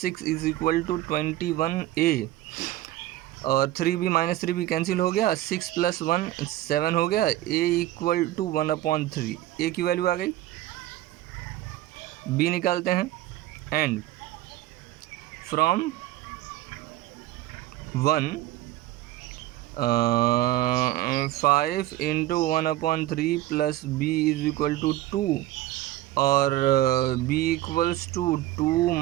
6 is equal to 21a और 3b माइनस 3b कैंसिल हो गया. 6 प्लस 1 7 हो गया. a equal to 1/3. a की वैल्यू आ गई. b निकालते हैं and from 1 5 into 1/3 plus b is equal to 2 और b इक्वल्स टू 2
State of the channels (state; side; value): quieter; left; 15.2 dB